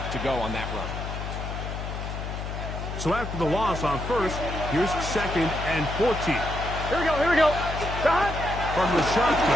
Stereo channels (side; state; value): left; noise; hum, 6 dB below the sound